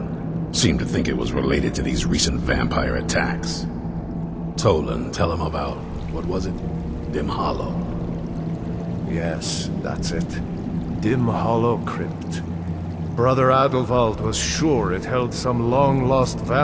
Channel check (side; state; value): both; identical; correlation 1.00